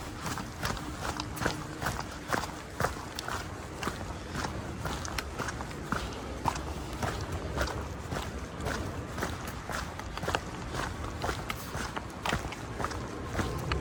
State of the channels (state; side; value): identical; both; correlation 1.00